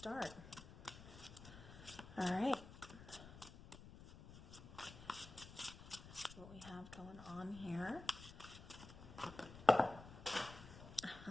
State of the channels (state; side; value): noise; left; rumble, 15 dB below the sound